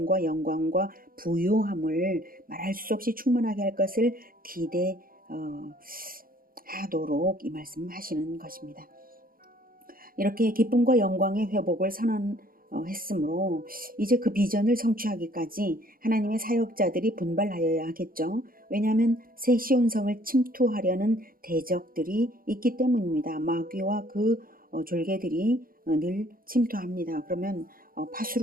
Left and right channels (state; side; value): late; left; 0.42 ms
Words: 영광과 부요함을 말할 수 없이 충만하게 할 것을 기대하도록 이 말씀하시는 것입니다. 이렇게 기쁨과 영광의 회복을 선언했으므로 이제 그 비전을 성취하기까지 하나님의 사역자들이 분발하여야 하겠죠. 왜냐하면 새 시온성을 침투하려는 대적들이 있기 때문입니다. 마귀와 그 졸개들이 늘 침투합니다. 그러면